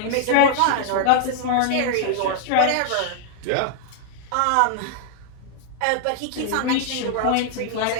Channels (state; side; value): different; both; correlation 0.00